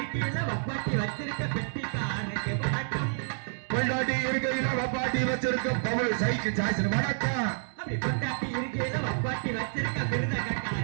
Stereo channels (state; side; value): silent; left; digital silence